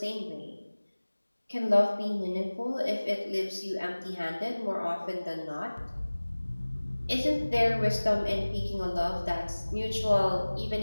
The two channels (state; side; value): inverted; both; correlation -1.00